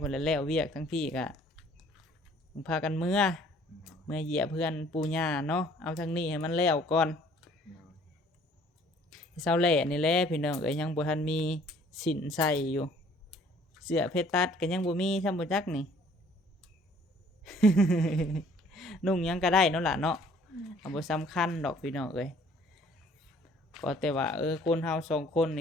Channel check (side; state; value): both; normal; correlation 0.57